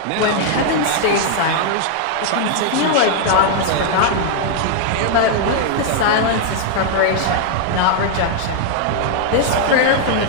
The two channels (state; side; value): different; both; correlation 0.00